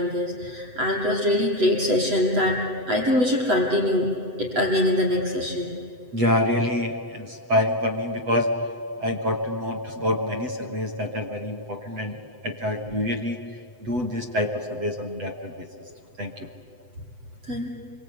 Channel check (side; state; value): left; late; 8.0 ms